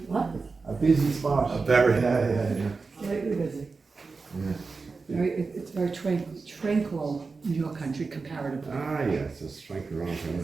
What? A busy spot. A very, Slightly busy. It's very tranquil in your country comparatively. Ah, yes, it's strength around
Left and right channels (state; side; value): quieter; left; 4.3 dB